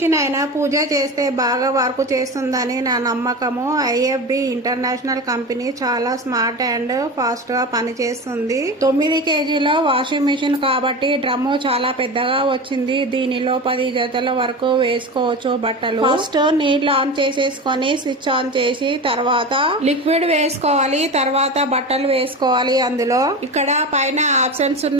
అయినా పూజ చేస్తే బాగా వర్క్ చేస్తుందని నా నమ్మకము. ఐఎఫ్బి ఇంటర్నేషనల్ కంపెనీ చాలా స్మార్ట్ అండ్ ఫాస్ట్ గా పనిచేస్తుంది. 9 కేజీల వాషింగ్ మిషన్ కాబట్టి డ్రమ్ము చాలా పెద్దగా వచ్చింది. దీనిలో 10 జతల వరకు వేసుకోవచ్చు బట్టలు. ఫస్ట్ నీళ్లు ఆన్ చేసేసుకొని స్విచ్ ఆన్ చేసి తర్వాత లిక్విడ్ వేసుకోవాలి, తర్వాత బట్టలు వేసుకోవాలి. అందులో ఇక్కడ పైన ఆప్షన్స్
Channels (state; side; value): normal; both; correlation 0.27